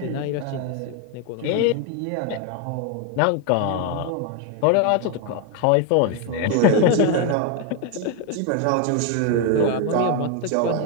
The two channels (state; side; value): different; both; correlation 0.01